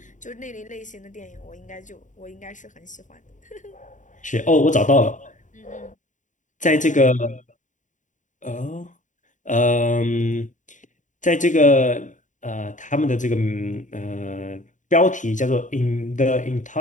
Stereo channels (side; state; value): right; late; 0.36 ms